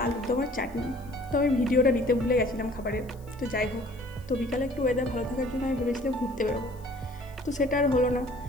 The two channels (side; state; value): left; noise; hiss, 27 dB below the sound